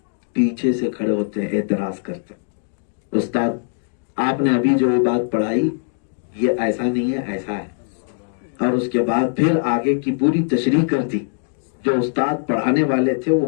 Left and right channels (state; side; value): silent; right; digital silence